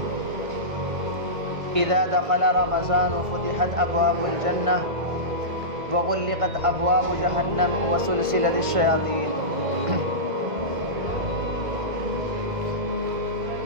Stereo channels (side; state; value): left; late; 1.6 ms